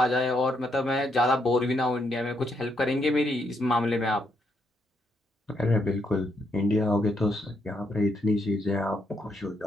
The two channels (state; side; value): normal; both; correlation 0.77